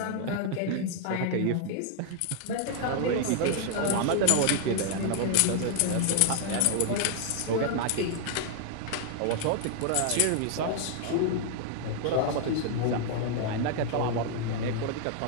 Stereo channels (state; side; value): different; both; correlation 0.00